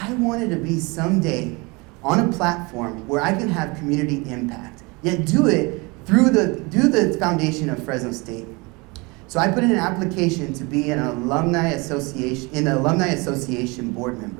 I wanted to be someday on a platform where I can have community impact, yet do it through the foundation of Fresno State. So I put in an application to be an alumni association board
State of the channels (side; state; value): left; quieter; 26.9 dB